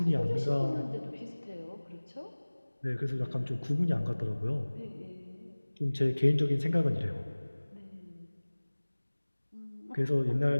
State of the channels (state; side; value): inverted; both; correlation -1.00